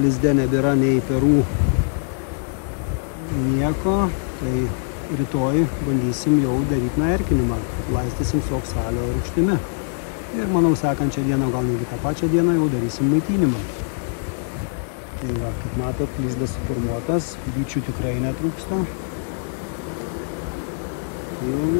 lizde nebėra nei perų nieko, tai rytoj bandysim jau daryti erkinimą, laistysim su oksalio rūgštimi. Ir manau, sekančią dieną, gal netgi tą pačią dieną jau darysim maitinimą. Tai va, kaip matot, lizdas suformuotas, bičių tikrai netrūksta.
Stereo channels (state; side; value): silent; right; 55 dB below the other